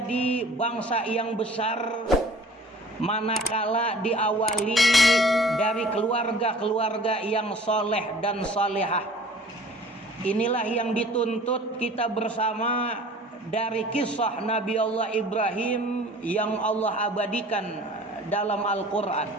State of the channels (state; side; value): normal; both; correlation 0.48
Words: bangsa yang besar manakala diawali dari keluarga-keluarga yang soleh dan solehah. Inilah yang dituntut kita bersama dari kisah Nabi Allah Ibrahim yang Allah abadikan dalam Al-Quran.